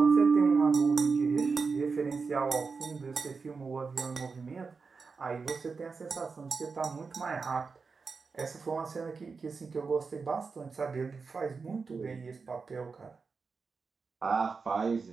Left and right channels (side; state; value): left; quieter; 4.8 dB